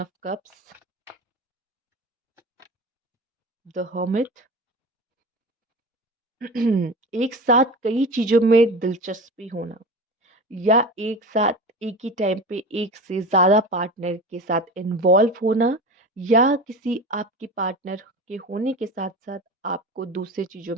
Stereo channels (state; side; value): normal; both; correlation 0.30